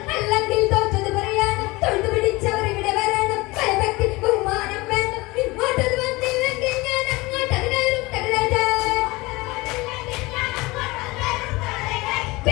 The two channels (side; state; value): right; quieter; 22.3 dB